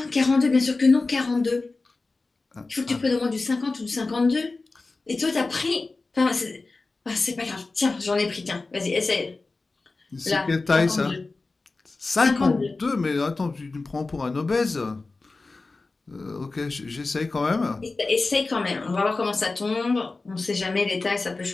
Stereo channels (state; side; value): quieter; right; 3.6 dB